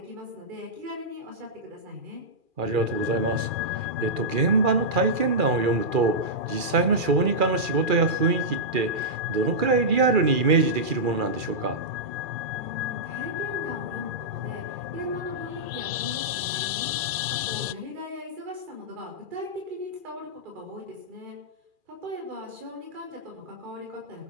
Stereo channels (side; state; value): left; late; 2.4 ms